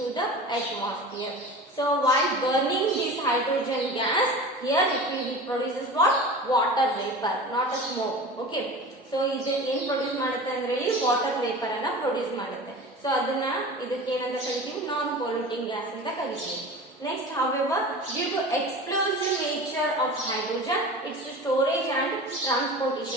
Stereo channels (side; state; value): both; normal; correlation 0.35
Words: the atmosphere. So while burning this hydrogen gas, here it will produces what? Water vapor, not a smoke. Okay, so ಇದು ಏನ್ produce ಮಾಡುತ್ತೆ ಅಂದ್ರೆ water vapour ಅನ್ನ produce ಮಾಡುತ್ತೆ. So ಅದನ್ನ ಇದಕ್ಕೆ ಏನಂತ ಕರಿತೀವಿ? ನಾನ್ ಪೊಲ್ಯೂಟಿಂಗ್ ಗ್ಯಾಸ್ ಅಂತ ಕರಿತೀವಿ. Next, however, due to explosive nature of hydrogen, its storage and